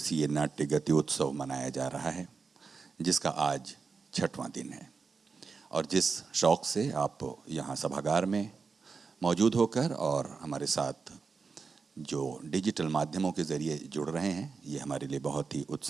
नाट्य गति उत्सव मनाया जा रहा है, जिसका आज 6वां दिन है। और जिस शौक से आप यहाँ सभागार में मौजूद होकर और हमारे साथ जो डिजिटल माध्यमों के ज़रिए जुड़ रहे हैं, ये हमारे लिए बहुत ही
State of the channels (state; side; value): quieter; left; 4.9 dB